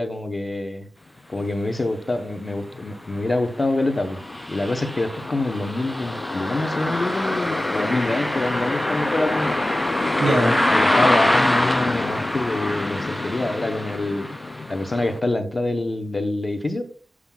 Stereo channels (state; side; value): normal; both; correlation 0.96